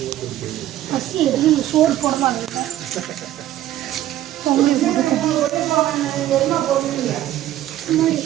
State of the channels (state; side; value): quieter; left; 13.3 dB